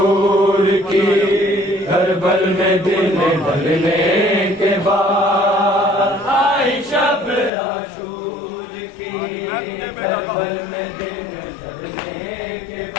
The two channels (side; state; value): right; drops out; at 7.5 s